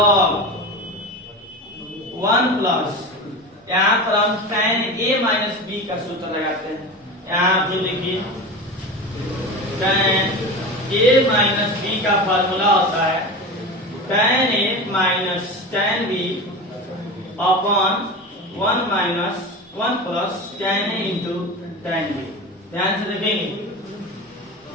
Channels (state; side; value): normal; both; correlation 0.28